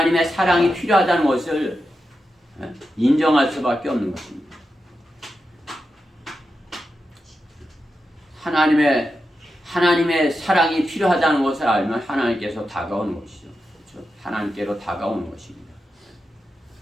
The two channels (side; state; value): both; normal; correlation 0.89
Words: 사랑이 필요하다는 것을 인정할 수밖에 없는 것입니다. 하나님의 사랑이 필요하다는 것을 알면 하나님께서 다가오는 것이죠. 그렇죠? 하나님께로 다가오는 것입니다.